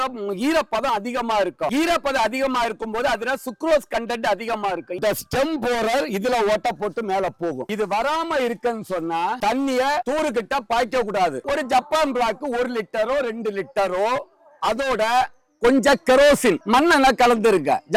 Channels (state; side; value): identical; both; correlation 1.00